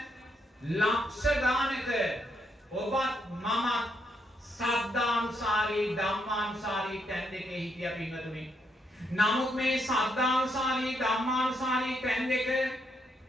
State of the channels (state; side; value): normal; both; correlation 0.77